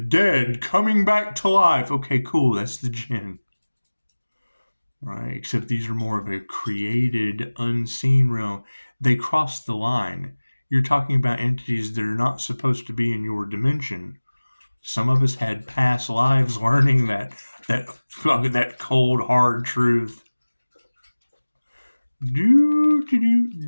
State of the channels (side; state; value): both; inverted; correlation -1.00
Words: coming back to life. Okay, cool. That's the Jinn. Right? Except these are more of a created, unseen realm. They cross the line. You're talking about entities that are not supposed to be in your dimension. Some of us had past lives learning that cold, hard truth. And